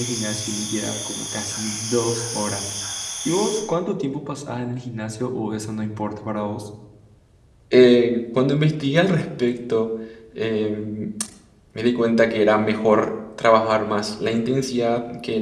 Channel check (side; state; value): both; identical; correlation 1.00